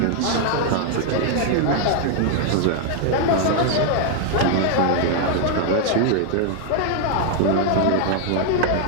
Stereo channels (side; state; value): both; different; correlation 0.00